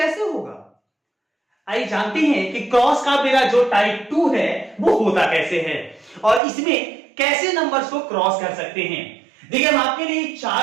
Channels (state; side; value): drops out; left; at 6.4 s